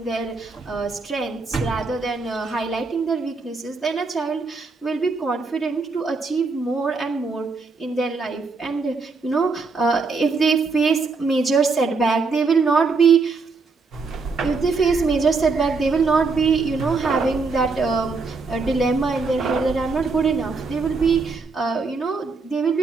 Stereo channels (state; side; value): quieter; left; 4.3 dB